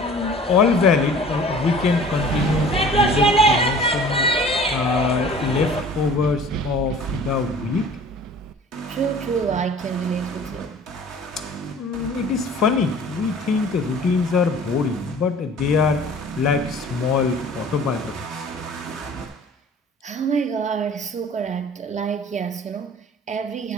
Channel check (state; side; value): normal; both; correlation 0.46